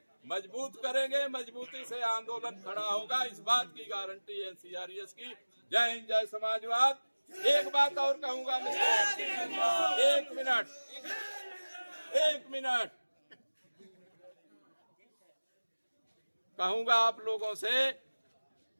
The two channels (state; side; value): inverted; both; correlation -1.00